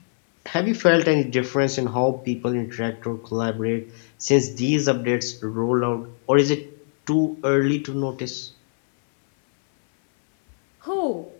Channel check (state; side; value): silent; right; 64 dB below the other